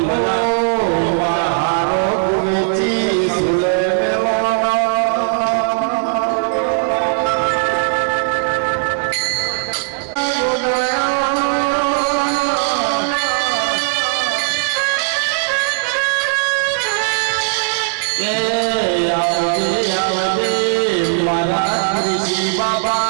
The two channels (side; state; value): left; silent; digital silence